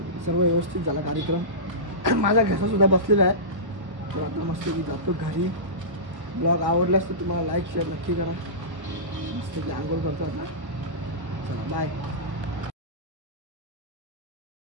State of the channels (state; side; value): late; left; 1.1 ms